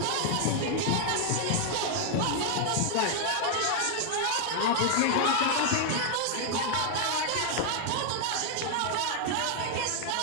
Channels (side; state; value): both; different; correlation 0.00